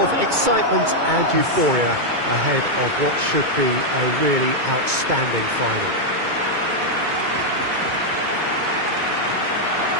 excitement and euphoria ahead of what should be a really outstanding final.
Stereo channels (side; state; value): left; late; 2.2 ms